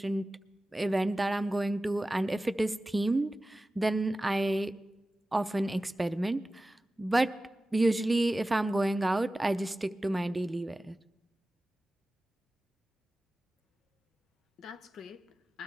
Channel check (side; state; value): both; normal; correlation 0.96